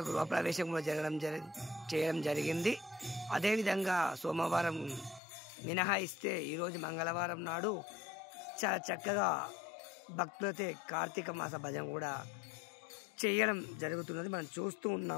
గృహప్రవేశం కూడా చేయడం జరిగింది। అదేవిధంగా సోమవారం మినహాయిస్తే ఈరోజు మంగళవారం నాడు చాలా చక్కగా భక్తులైతే కార్తీక మాస భజన కూడా చేయడం జరుగుతున్నది। మనం చూస్తూ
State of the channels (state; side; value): drops out; right; at 5.2 s